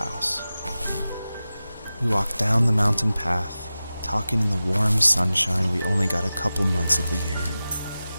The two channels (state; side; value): inverted; both; correlation -0.95